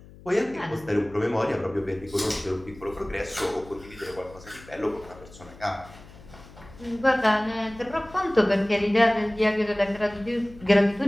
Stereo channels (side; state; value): left; noise; hum, 20 dB below the sound